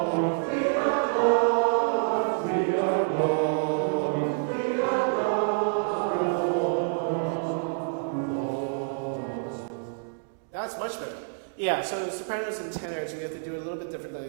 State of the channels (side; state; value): left; silent; digital silence